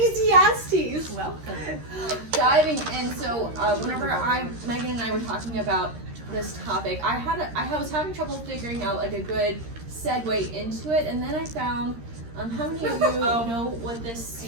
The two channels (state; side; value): late; left; 13 ms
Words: Welcome. Diving in. So, whenever Megan and I were talking about this topic, I was having trouble figuring out like a good segue into it, and then I found. How many of you know what this